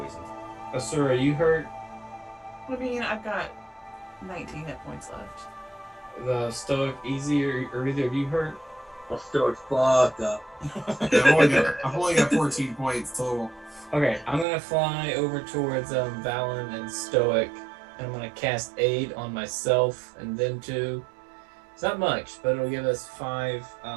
Asura, you hurt? I mean, I've got 19 hit points left. The Stoic easy, or either of you hurt? I'm still fucked up. Yeah, I've only got 14 points total. Okay, I'm gonna fly over towards Valen and Stoic, and I'm gonna cast Aid on myself and them two. It's not much, but it'll give us 5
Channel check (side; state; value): left; drops out; at 14.5 s